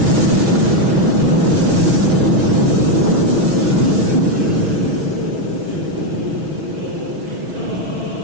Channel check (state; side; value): late; left; 6.2 ms